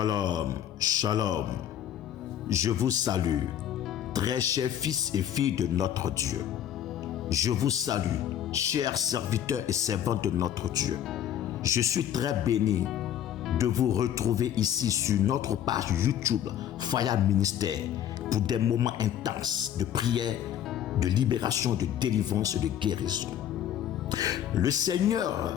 shalom. Je vous salue, très chers fils et filles de notre Dieu. Je vous salue, chers serviteurs et servantes de notre Dieu. Je suis très béni de vous retrouver ici sur notre page YouTube Fire Ministère pour des moments intenses de prière, de libération, de délivrance et de guérison. Le Seigneur,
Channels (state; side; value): quieter; right; 10.4 dB